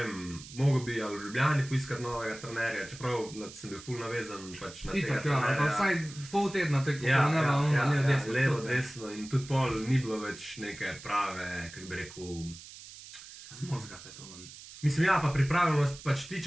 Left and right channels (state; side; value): noise; right; hiss, 16 dB below the sound